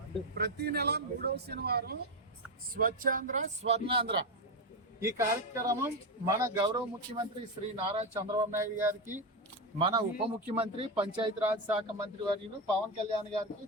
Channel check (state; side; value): normal; both; correlation 0.10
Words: ప్రతి నెల 3వ శనివారం స్వచ్ఛాంధ్ర, స్వర్ణాంధ్ర ఈ కార్యక్రమం మన గౌరవ ముఖ్యమంత్రి శ్రీ నారా చంద్రబాబు నాయుడు గారికి, మన ఉప ముఖ్యమంత్రి పంచాయతీరాజ్ శాఖ మంత్రి వర్యులు పవన్ కళ్యాణ్ గారికి